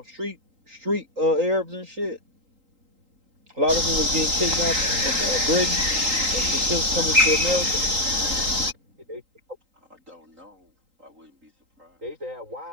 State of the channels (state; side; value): late; left; 3.8 ms